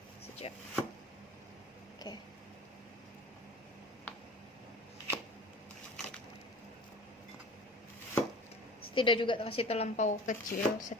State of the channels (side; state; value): both; normal; correlation 0.41